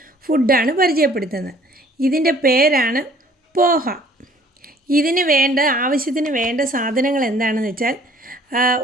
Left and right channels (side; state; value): both; normal; correlation 0.56